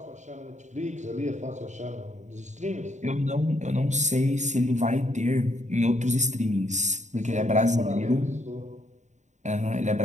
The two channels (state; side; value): late; left; 0.34 ms